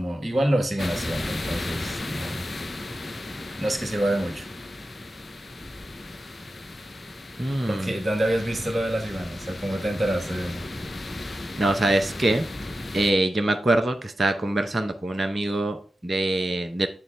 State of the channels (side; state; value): both; normal; correlation 0.92